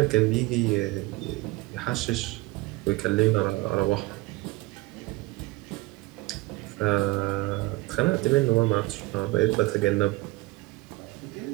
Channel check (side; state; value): left; quieter; 21.1 dB